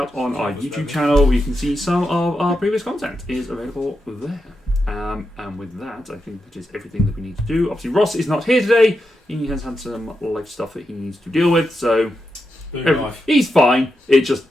on our YouTube channel where you can see some of our previous content is available there. And with that, I think that is everything that we need to do. Obviously, Ross is not here today. He has had some life stuff that he needs to deal with, so Life. he's fine. It just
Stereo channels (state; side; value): normal; both; correlation 0.87